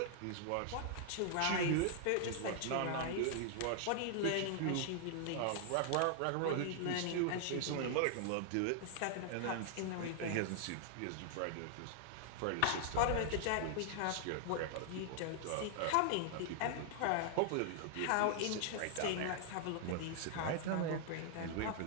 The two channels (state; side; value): different; both; correlation -0.01